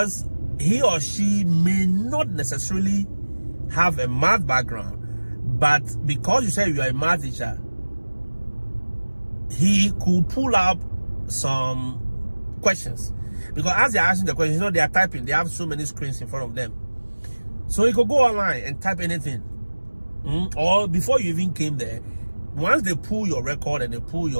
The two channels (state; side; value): inverted; both; correlation -1.00